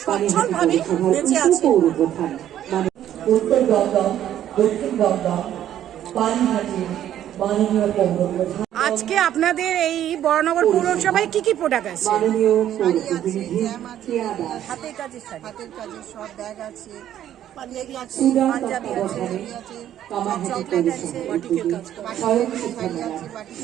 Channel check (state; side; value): quieter; left; 11.3 dB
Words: সচ্ছলভাবে বেঁচে আছে। উত্তর দমদম, দক্ষিণ দমদম, পানিহাটির মাননীয় পৌরপ্রধান। আজকে আপনাদের এই বড়নগর পৌরসভায় কি কি প্রোডাক্ট আছে? হাতের কাজের সব ব্যাগ আছে, পাঞ্জাবি আছে, চকলেট আছে, বাটিকের কাজ,